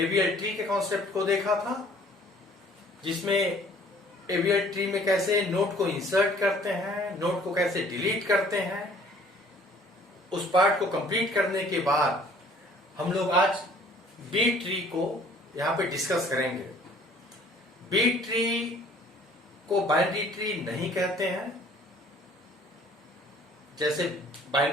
ट्री के कॉन्सेप्ट को देखा था, जिसमें एवीएल ट्री में कैसे नोड को इंसर्ट करते हैं, नोड को कैसे डिलीट करते हैं। उस पार्ट को कंप्लीट करने के बाद हम लोग आज बी ट्री को यहां पे डिस्कस करेंगे। बी ट्री को बाइनरी ट्री नहीं कहते हैं। जैसे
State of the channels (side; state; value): both; normal; correlation 0.55